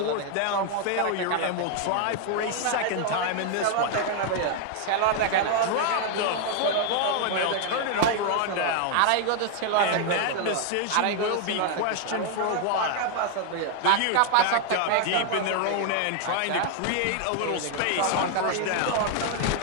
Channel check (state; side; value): different; both; correlation 0.00